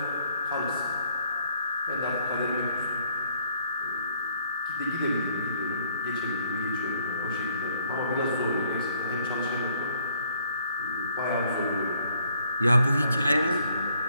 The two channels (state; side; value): inverted; both; correlation -0.66